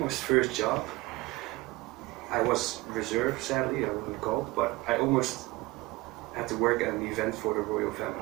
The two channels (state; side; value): quieter; left; 21.7 dB